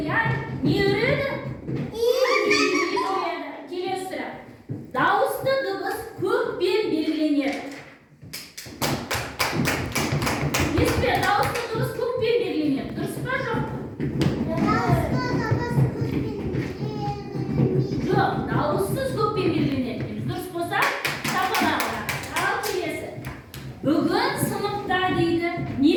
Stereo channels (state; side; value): identical; both; correlation 1.00